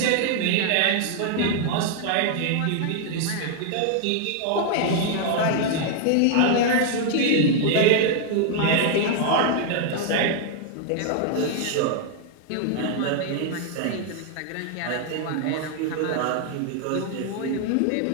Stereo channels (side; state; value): both; different; correlation 0.00